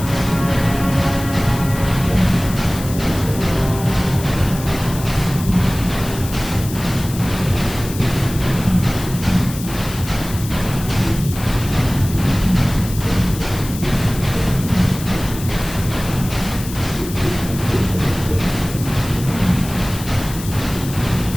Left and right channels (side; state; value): left; noise; hiss, 12 dB below the sound